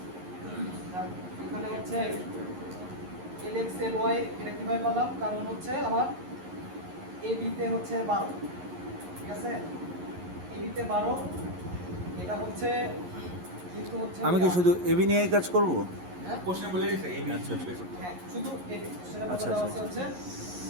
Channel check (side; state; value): left; late; 11 ms